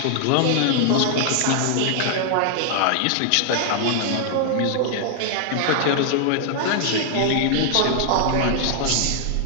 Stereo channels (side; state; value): both; different; correlation -0.01